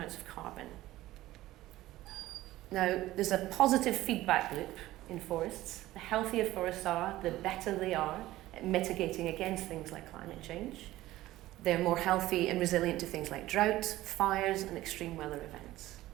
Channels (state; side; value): quieter; left; 16.2 dB